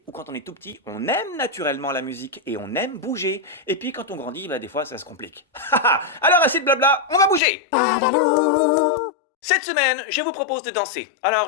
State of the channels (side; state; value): right; drops out; at 7.4 s